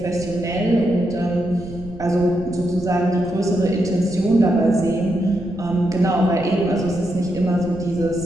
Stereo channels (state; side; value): noise; right; rumble, 16 dB below the sound